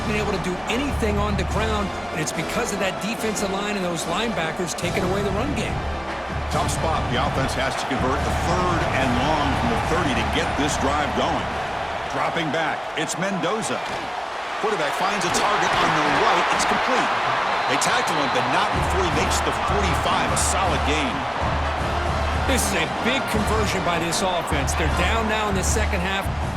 been able to do anything on the ground, and it's because of that defensive line and those linebackers taking away the run game. Tough spot. The offense has to convert the third and long from the 30 to get this drive going. Dropping back, it's Mendoza. Quarterback finds a target on the right. It's complete. They tackle him, but not before he makes the 45. A solid gain. This is a big conversion by this offense. They're down now in the second half.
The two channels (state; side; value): identical; both; correlation 1.00